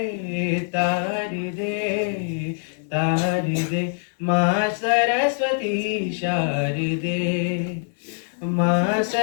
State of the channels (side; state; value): right; silent; 63 dB below the other